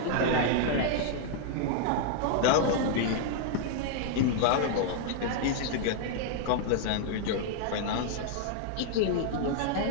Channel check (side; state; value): both; different; correlation -0.01